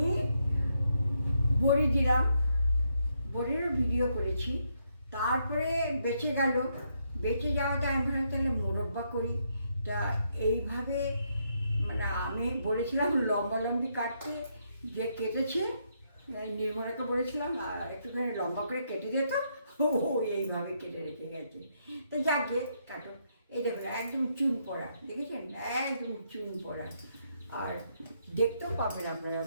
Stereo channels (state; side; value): inverted; both; correlation -0.77